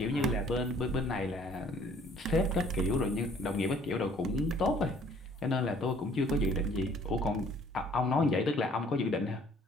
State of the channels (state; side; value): normal; both; correlation 0.57